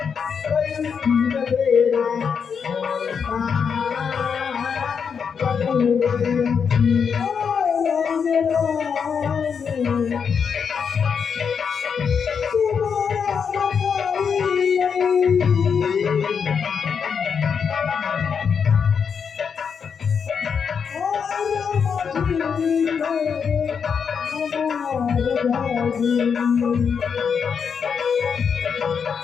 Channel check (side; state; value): right; quieter; 6.5 dB